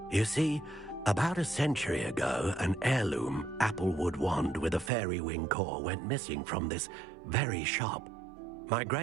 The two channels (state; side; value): drops out; left; at 4.9 s